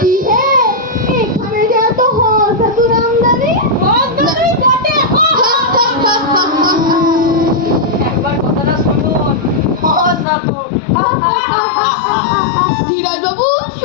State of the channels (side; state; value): right; drops out; at 10.2 s